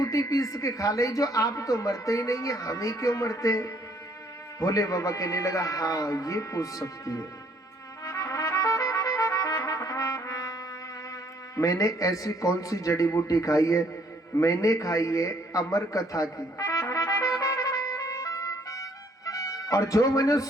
पीस के खा ली जो आप तो मरते ही नहीं है, हम ही क्यों मरते? भोले बाबा कहने लगा हाँ ये पूछ सकती है। मैंने ऐसी कौन सी जड़ी बूटी खाई है? मैंने खाई है अमर कथा की, और जो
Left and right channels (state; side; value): normal; both; correlation 0.64